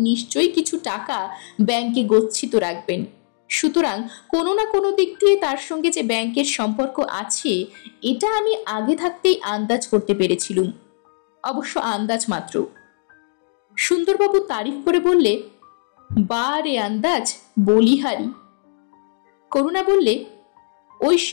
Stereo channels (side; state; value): right; silent; digital silence